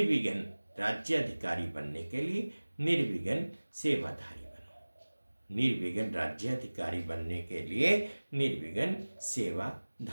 राज्याधिकारी बनने के लिए निर्विघ्न सेवाधारी बनो। निर्विघ्न राज्याधिकारी बनने के लिए निर्विघ्न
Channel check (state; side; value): inverted; both; correlation -1.00